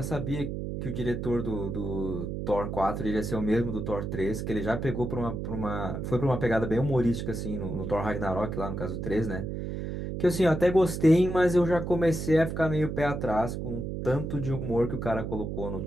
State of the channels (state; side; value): noise; right; hum, 4 dB below the sound